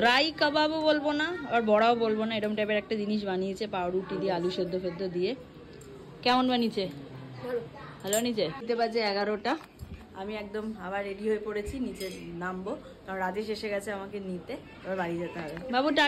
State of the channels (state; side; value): identical; both; correlation 1.00